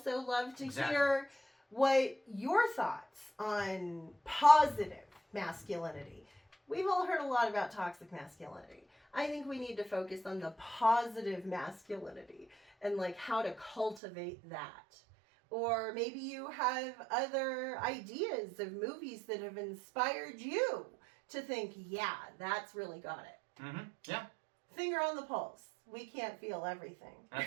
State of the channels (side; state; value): left; drops out; at 14.0 s